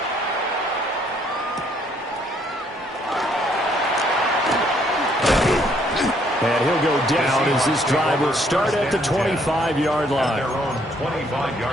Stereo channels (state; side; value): normal; both; correlation 0.67